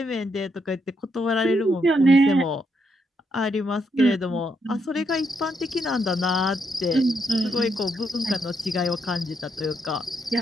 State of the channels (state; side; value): normal; both; correlation 0.78